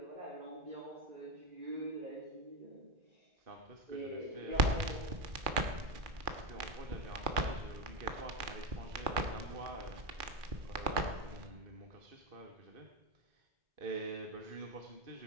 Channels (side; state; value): left; late; 2.4 ms